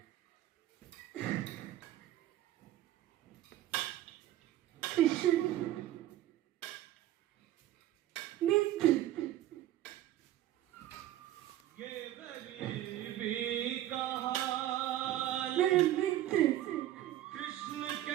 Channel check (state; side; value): quieter; left; 13.4 dB